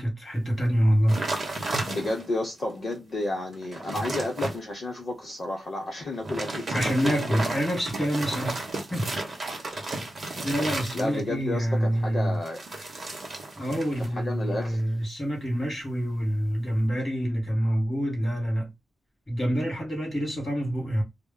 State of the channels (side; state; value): both; normal; correlation 0.93